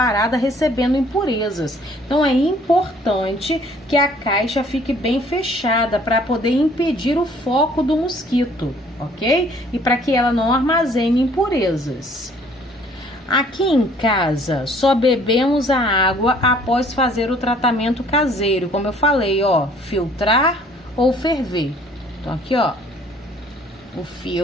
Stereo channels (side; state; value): both; normal; correlation 0.57